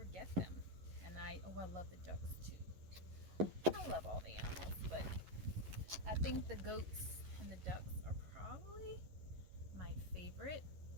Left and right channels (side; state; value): left; late; 11 ms